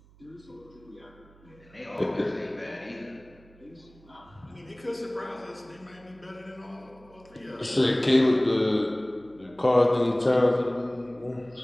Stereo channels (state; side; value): noise; right; hum, 26 dB below the sound